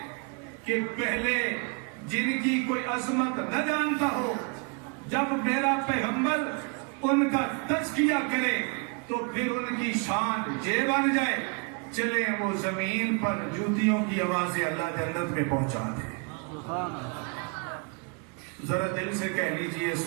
کہ پہلے جن کی کوئی عظمت نہ جانتا ہو، جب میرا پیغمبر ان کا تزکیہ کرے تو پھر ان کی شان یہ بن جائے چلے وہ زمین پر جوتیوں کی آوازیں اللہ جنت میں پہنچا دے۔ ذرا دل سے کہہ لیجئے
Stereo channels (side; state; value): left; quieter; 34.6 dB